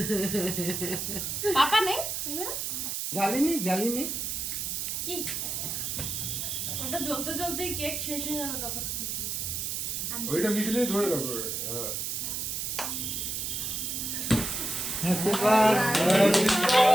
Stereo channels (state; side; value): noise; right; hiss, 2 dB below the sound